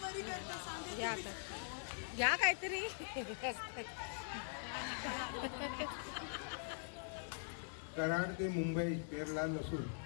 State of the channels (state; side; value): silent; right; digital silence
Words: या आता या काहीतरी. कराड ते मुंबई पेरला नसून